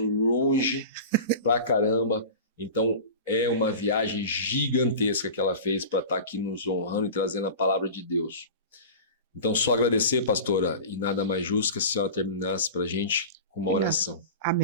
pra caramba. Então, é uma viagem gigantesca que ela fez para estar aqui nos honrando e trazendo a palavra de Deus. Então, só agradecer, pastora, e nada mais justo que a senhora terminasse para a gente com uma oração.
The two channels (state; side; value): inverted; both; correlation -0.33